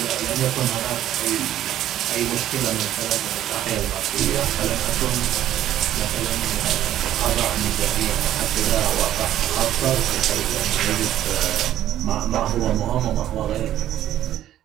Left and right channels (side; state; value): left; quieter; 12.2 dB